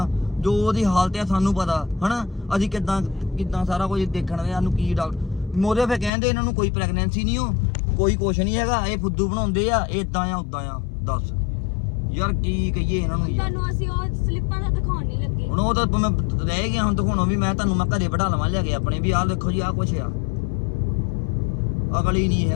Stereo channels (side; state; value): right; drops out; at 6.1 s